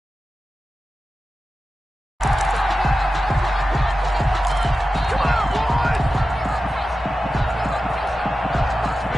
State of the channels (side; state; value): both; normal; correlation 0.93